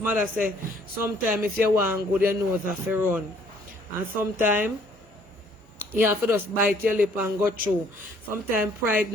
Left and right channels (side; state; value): both; normal; correlation 0.61